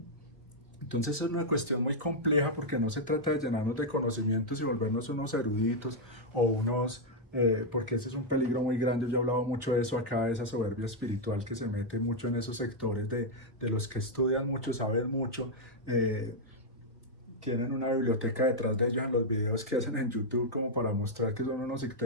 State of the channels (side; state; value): both; normal; correlation -0.02